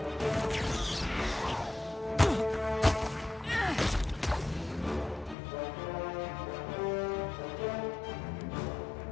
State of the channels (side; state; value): right; drops out; at 5.4 s